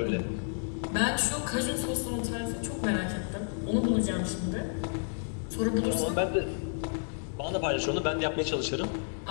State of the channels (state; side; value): silent; right; digital silence